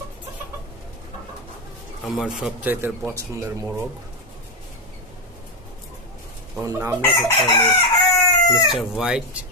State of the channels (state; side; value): normal; both; correlation 0.07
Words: আমার সবচাইতে পছন্দের মোরগ। ওর নাম রেখেছি আমি মিস্টার হোয়াইট।